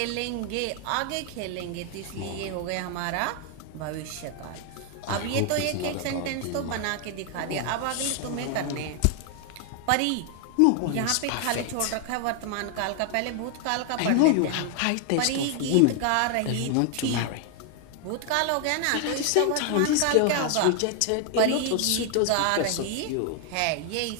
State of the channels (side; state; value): both; different; correlation 0.00